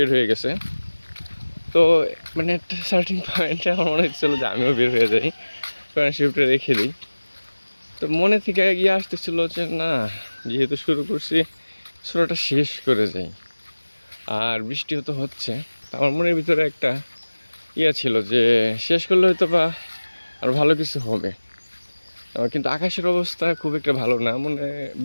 হয়ে গেছে। তো মানে একটা সার্টিন পয়েন্টে আমার মনে হচ্ছিলো যে আমিও বের হয়ে যাই, কারণ শিফটে রেখে দিই। তো মনে থেকে গিয়ে আসতেছিল যে না, যেহেতু শুরু করছি সূরাটা শেষ করে যাই। আর বৃষ্টিও তো হচ্ছে, আমার মনের ভিতরে একটা ছিল যে শেষ করলে হয়তো বা আর ভালো কিছু হবে। কিন্তু আকাশের অবস্থা খুব একটা ভালো না, মনে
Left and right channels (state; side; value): inverted; both; correlation -1.00